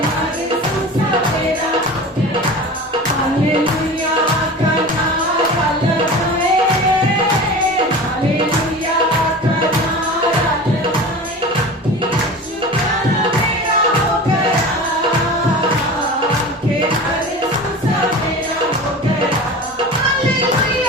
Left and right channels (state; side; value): normal; both; correlation 0.34